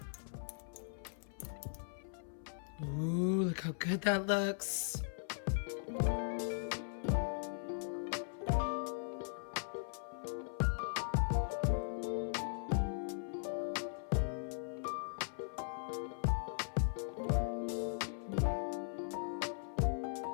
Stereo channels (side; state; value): right; silent; 52 dB below the other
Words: Ooh, look how good that looks.